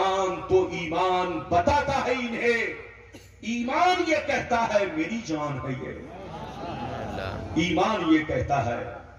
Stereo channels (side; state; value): both; identical; correlation 1.00